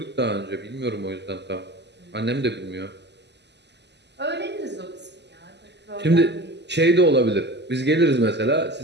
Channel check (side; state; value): left; late; 0.50 ms